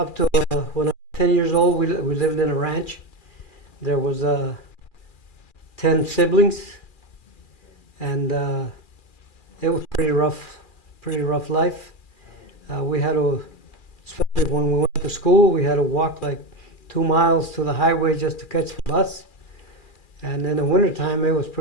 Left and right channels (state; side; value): late; right; 2.4 ms